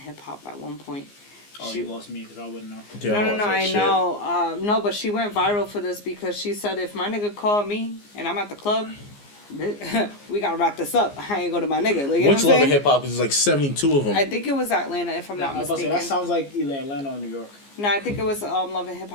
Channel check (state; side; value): late; right; 15 ms